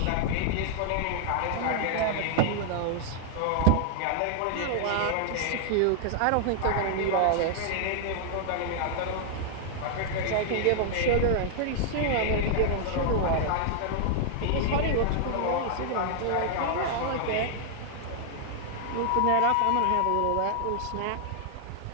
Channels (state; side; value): different; both; correlation -0.01